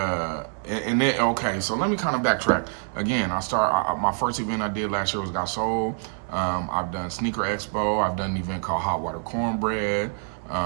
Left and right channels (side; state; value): left; silent; 59 dB below the other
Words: And then, okay, so let me kind of backtrack. Again, my first event I did last year was Got Sold. I've done Sneaker Expo. I've done an event called Hot Water Cornbread.